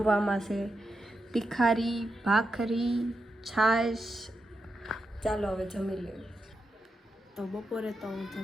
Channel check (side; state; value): both; normal; correlation 0.87